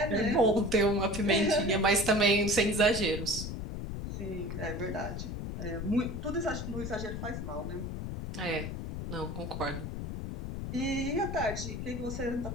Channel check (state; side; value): noise; left; rumble, 5 dB below the sound